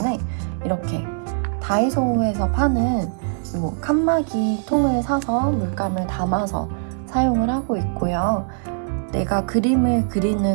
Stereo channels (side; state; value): left; silent; 64 dB below the other